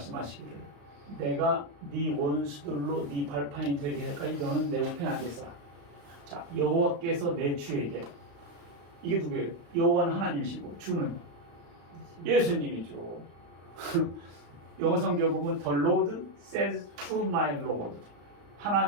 내가 네 원수들로 네 발판이 되게 할까지 너는 내 우편에 앉았으라. 자, 여호와께서 내 주에게 이게 누구예요? 여호와는 하나님이시고 주는 예수님이죠. 영어 성경 보면 The Lord says to my Lord.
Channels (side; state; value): left; late; 35 ms